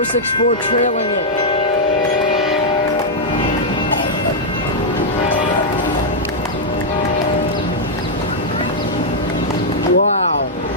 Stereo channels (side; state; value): both; normal; correlation -0.04